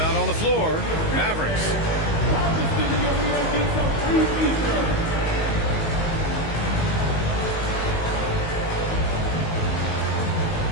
on the floor. Mavericks.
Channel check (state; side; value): late; right; 19 ms